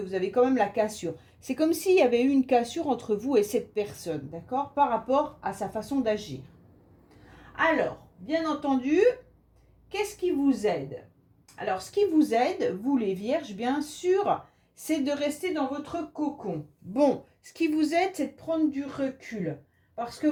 avez quand même la cassure. C'est comme s'il y avait eu une cassure entre vous et cette personne, d'accord? Par rapport à sa façon d'agir. Alors, bien entendu, qu'est-ce qui vous aide? Alors, ce qui vous aide, vous les vierges, bien sûr, c'est de rester dans votre cocon. Bon, ce qui vous aide, c'est de prendre du recul. Parce que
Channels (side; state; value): both; identical; correlation 1.00